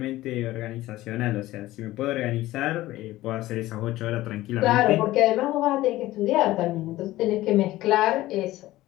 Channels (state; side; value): quieter; right; 16.6 dB